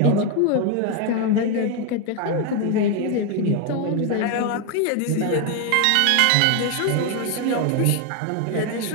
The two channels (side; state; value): both; different; correlation 0.01